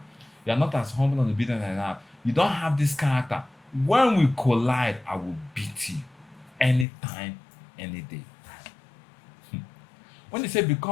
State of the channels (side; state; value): right; drops out; at 6.9 s